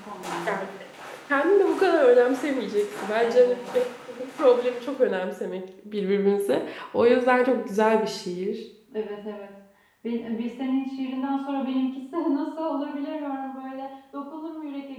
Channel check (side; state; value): both; identical; correlation 1.00